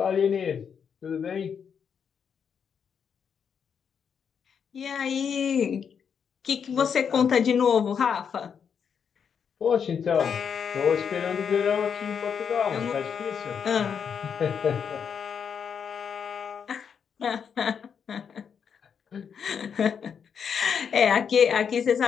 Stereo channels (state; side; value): quieter; right; 7.1 dB